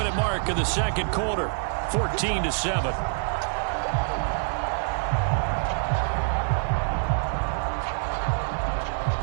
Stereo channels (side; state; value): left; silent; digital silence